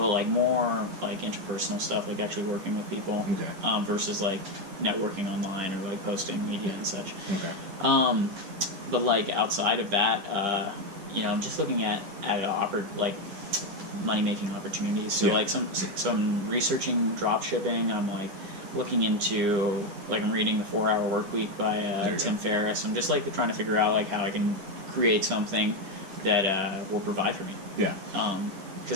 like more like interpersonal stuff, like actually working with people. Okay. Versus like networking online or like posting media and such. Okay. But like outside of that, I'm just looking at like money making opportunities. So like some researching drop shipping. I'm like looking into like I'm reading The 4-Hour Workweek by Tim Ferriss. I'm just like trying to figure out like how I can create something that will provide for me. Yeah.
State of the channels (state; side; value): late; left; 10 ms